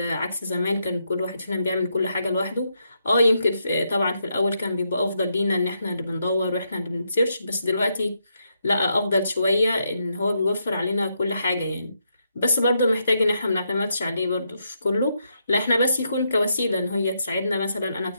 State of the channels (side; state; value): both; inverted; correlation -0.80